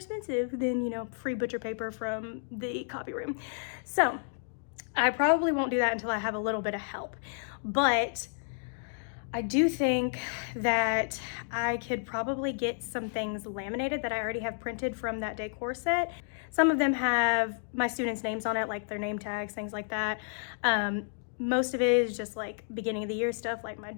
than, you know, free butcher paper from the copy room. So I probably won't do that until I have a little bit of help. But I do think that I could probably get some things laminated that I already have printed from that decor set. Some of them have my students' names on it, like their name tags, things like that. Most of it is just like beginning of the year stuff, like my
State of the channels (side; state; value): right; silent; digital silence